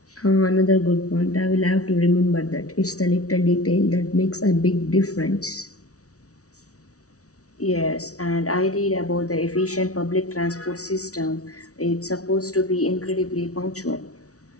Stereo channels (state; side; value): late; right; 0.66 ms